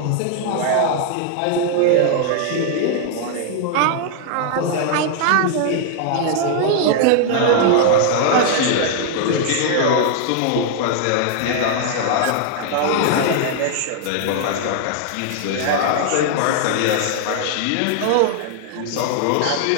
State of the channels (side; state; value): both; different; correlation 0.00